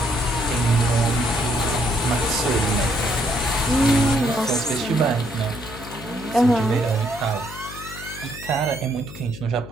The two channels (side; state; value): left; noise; hum, 14 dB below the sound